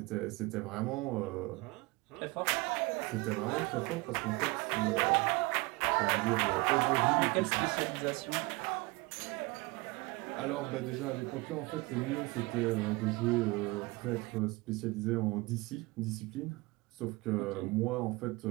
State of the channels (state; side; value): quieter; left; 23.9 dB